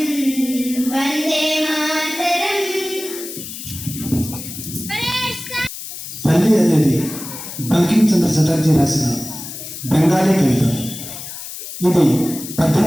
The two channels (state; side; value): noise; left; hiss, 10 dB below the sound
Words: वंदे मातरम. తల్లి అనేది బంకిం చంద్ర చటర్జీ రాసిన బెంగాలీ కవిత. ఇది